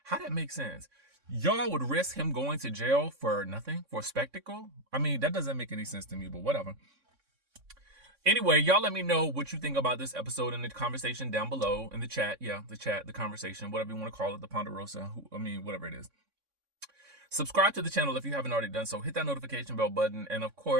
How that make sense? Y'all would risk him going to jail for nothing, for a spectacle? I mean, that doesn't make any sense to me, but whatever. Anyway, y'all let me know what you think about this episode in the conversation down below in the chat. Yeah, the conversation, whatever you want to call it, the Ponderosa, whatever it is. Subscribe to the channel if you haven't already done so. Hit that notification bell button. And of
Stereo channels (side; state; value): left; late; 3.6 ms